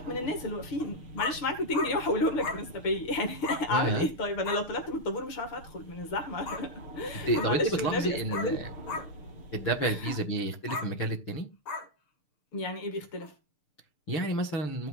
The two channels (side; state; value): right; late; 6.7 ms